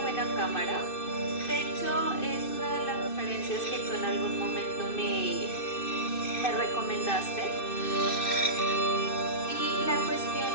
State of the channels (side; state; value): right; late; 2.6 ms